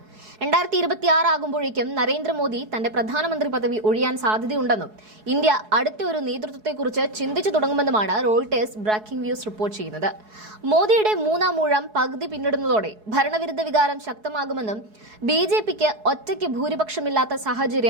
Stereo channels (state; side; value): late; left; 4.7 ms